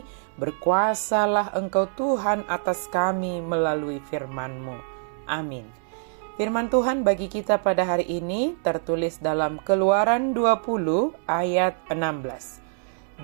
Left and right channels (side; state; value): left; silent; 62 dB below the other